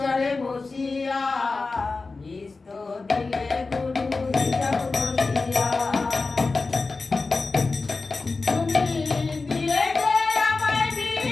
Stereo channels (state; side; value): quieter; right; 3.9 dB